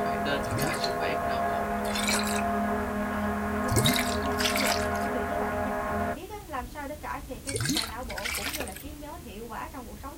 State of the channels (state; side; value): identical; both; correlation 1.00